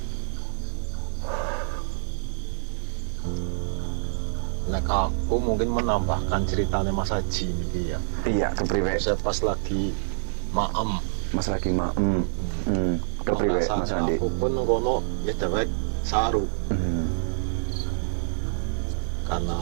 Nek aku mungkin menambahkan ceritanya Mas Haji ini ya. Iya, kepriwe. Saya pas lagi maem. Mas lagi kepriwe Mas Andi. Aku pun kono ya dewek saru.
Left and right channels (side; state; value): left; silent; digital silence